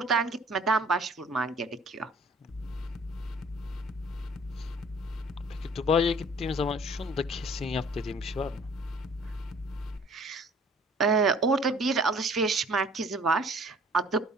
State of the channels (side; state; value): both; normal; correlation 0.53